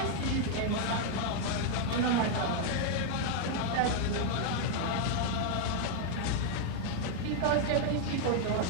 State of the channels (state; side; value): different; both; correlation 0.00